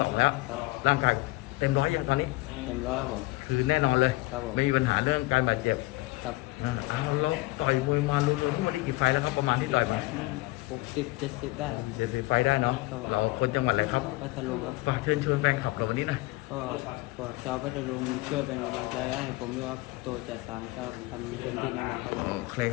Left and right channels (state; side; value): quieter; right; 20.9 dB